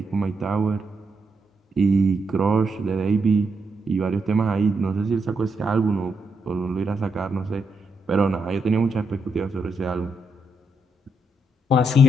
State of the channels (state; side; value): normal; both; correlation 0.80